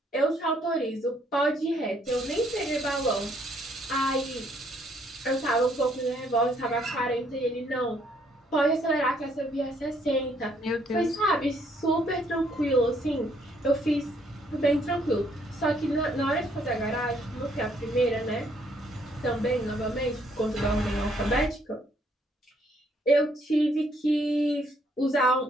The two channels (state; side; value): normal; both; correlation 0.68